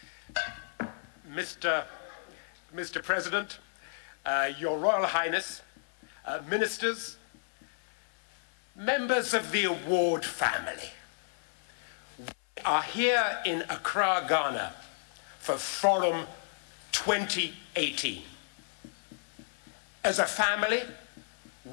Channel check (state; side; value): silent; right; 56 dB below the other